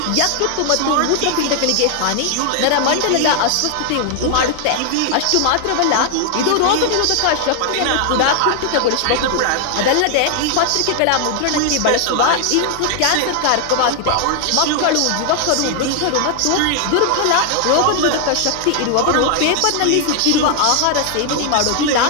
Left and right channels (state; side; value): different; both; correlation 0.00